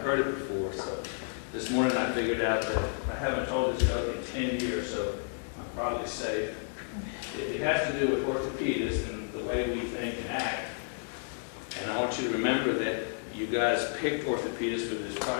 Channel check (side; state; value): right; silent; digital silence